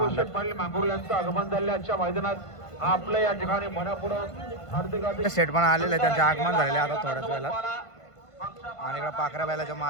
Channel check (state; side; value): late; right; 1.5 ms